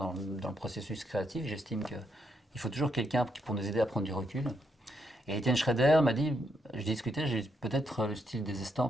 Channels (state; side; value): normal; both; correlation 0.78